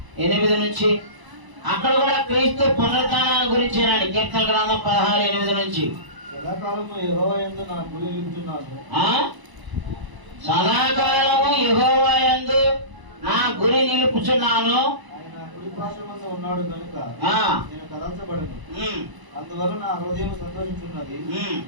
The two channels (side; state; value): left; late; 1.0 ms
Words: నుంచి. అక్కడ కూడా క్రీస్తు పునరుత్థానాన్ని గురించేనండి. కీర్తన గ్రంథం 16:8 నుంచి. సదాకాలము యెహోవా యందు నా గురి నిలుపుచున్నాను. సదాకాలము యెహోవా యందు నా గురి నిలుపుచున్నాను. ఆయన కుడి పార్శ్వమందు ఉన్నాడు కనుక నేను కదల్చబడను. అందువల్ల నా హృదయం సంతోషించున్నది,